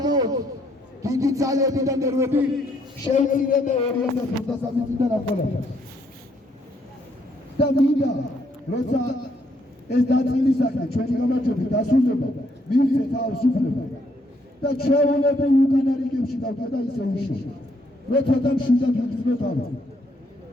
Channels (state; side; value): normal; both; correlation 0.71